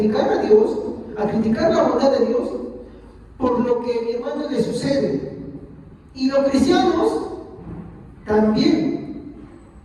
a Dios, a criticar la bondad de Dios por lo que, mi hermano, le sucede. Y los cristianos también.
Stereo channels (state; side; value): identical; both; correlation 1.00